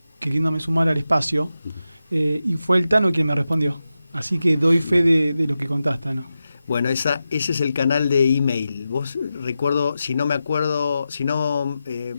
queriéndome sumar al espacio, y fue el Tano quien me respondió. Así que doy fe de lo que contaste, Tano. Bueno, ese es el canal de email. Vos, recuerdo, si no me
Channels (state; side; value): inverted; both; correlation -0.91